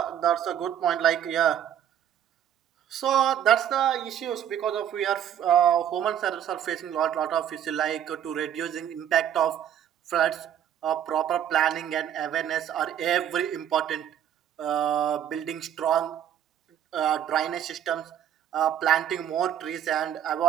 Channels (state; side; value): quieter; left; 10.1 dB